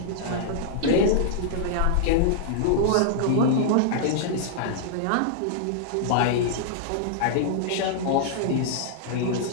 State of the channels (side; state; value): both; different; correlation -0.01